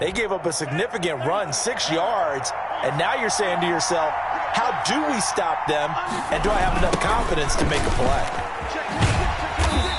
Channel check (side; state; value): both; identical; correlation 1.00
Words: gave up a significant run, 6 yards, and now you're saying to yourself, how do we stop them, and do I have enough confidence to make a play?